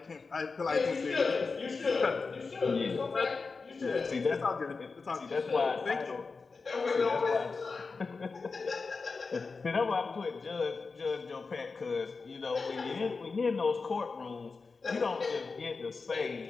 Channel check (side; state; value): right; quieter; 4.4 dB